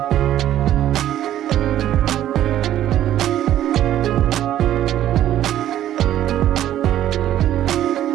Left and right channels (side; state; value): left; quieter; 12.2 dB